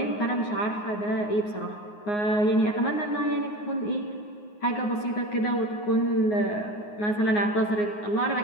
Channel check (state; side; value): late; right; 9.6 ms